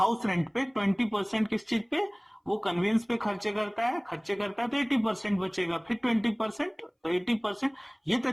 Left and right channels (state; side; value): identical; both; correlation 1.00